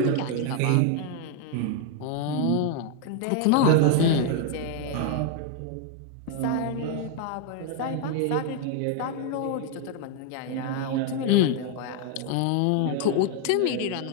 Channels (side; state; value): both; different; correlation 0.00